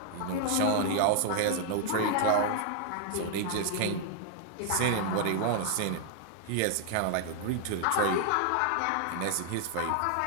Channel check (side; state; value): both; different; correlation 0.00